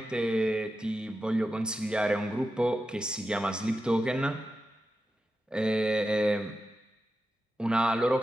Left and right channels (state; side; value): normal; both; correlation 0.90